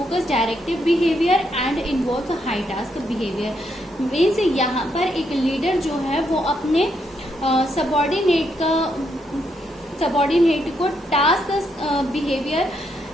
directive behaviour and involve high task behaviour. Means यहाँ पर एक लीडर जो है वो अपने सबऑर्डिनेट को टास्क बिहेवियर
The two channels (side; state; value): both; normal; correlation 0.77